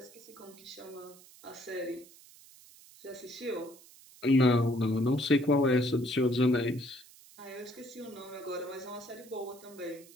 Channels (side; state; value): right; noise; hiss, 22 dB below the sound